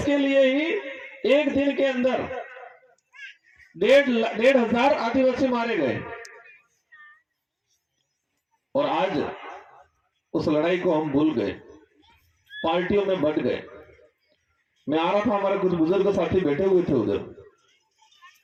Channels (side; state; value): both; identical; correlation 1.00